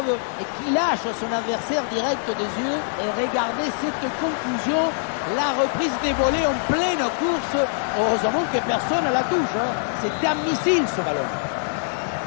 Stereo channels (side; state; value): right; silent; digital silence